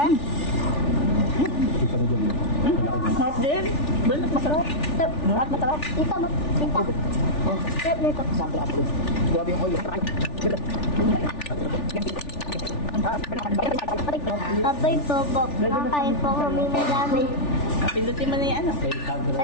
Masarap din. Balat, masarap. Lahat masarap. Ito mo. Ito. Sarap nito. Sample apple. Grabe yung oil. Abay po, Bob. Kakain po kami madami. Pindutin mo na yan.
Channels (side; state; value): right; late; 3.4 ms